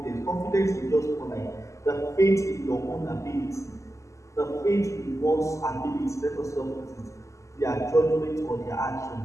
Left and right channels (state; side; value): late; right; 0.15 ms